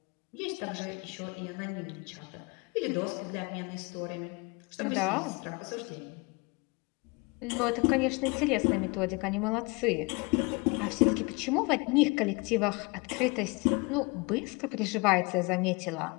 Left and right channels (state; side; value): quieter; right; 28.0 dB